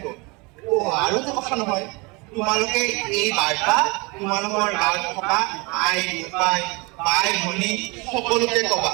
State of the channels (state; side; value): quieter; left; 27.6 dB